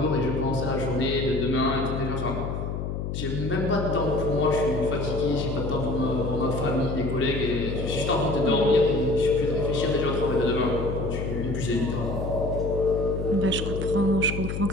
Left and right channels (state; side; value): noise; left; hum, 4 dB below the sound